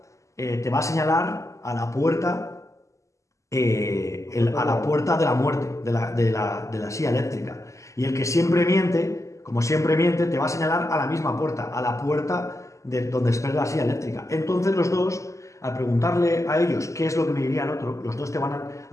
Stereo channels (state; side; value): late; right; 0.15 ms